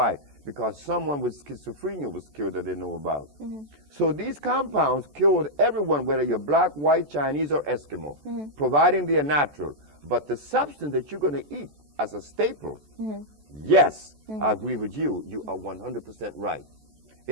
Because someone with schizophrenia was cured that they know about. So these compounds cured everyone, whether you're black, white, Chinese, or Eskimo, providing they are natural. But the substance that you're going to eat as a staple, yes, I agree with you. You are 100% right.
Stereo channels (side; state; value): left; late; 14 ms